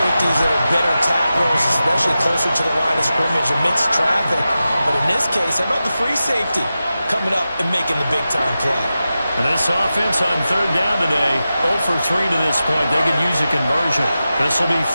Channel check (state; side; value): inverted; both; correlation -0.93